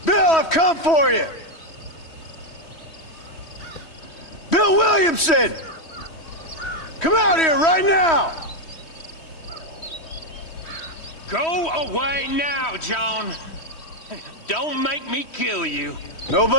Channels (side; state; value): right; late; 3.1 ms